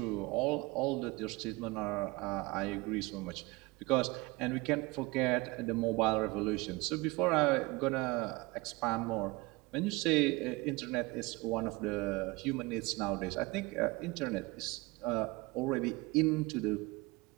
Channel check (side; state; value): left; quieter; 23.9 dB